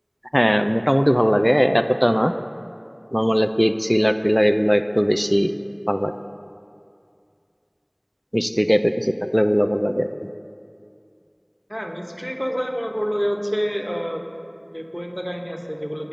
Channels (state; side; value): identical; both; correlation 1.00